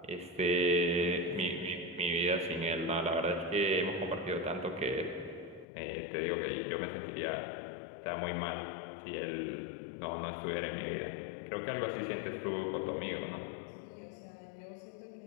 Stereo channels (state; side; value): drops out; right; at 5.7 s